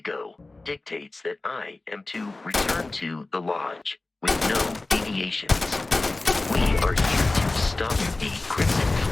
dictates that I am to return to the Lodge with no deviations. We are here to stop the Crimson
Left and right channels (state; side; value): quieter; right; 3.1 dB